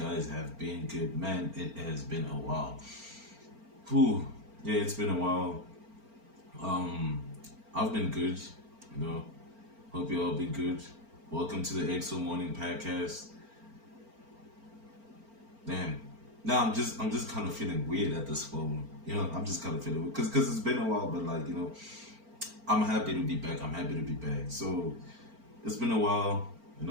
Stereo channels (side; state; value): left; late; 4.4 ms